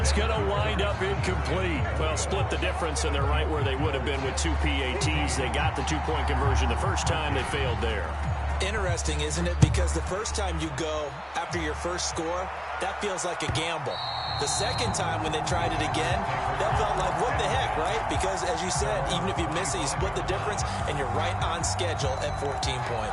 going to wind up incomplete. Well, split the difference, and they're right where they would have been with 2 PATs. They got the two-point conversion the first time. They failed there. Interesting, isn't it? Because the first time you go after your first score, that feels like a gamble. The second time when they tried it again, that felt like, what the heck, right? Because, as you said, even if you miss it, you split the difference, and you're right on schedule at 14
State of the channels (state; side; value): identical; both; correlation 1.00